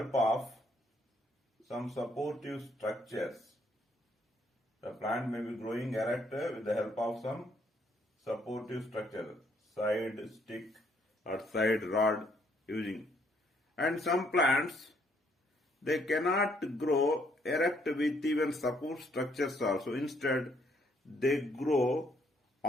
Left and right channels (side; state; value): both; normal; correlation 0.69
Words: of some supportive structures. The plant may be growing erect with the help of some supportive structure, side stick or side rod using. And some plants, they cannot grow erect with even support structures also. Instead, they grow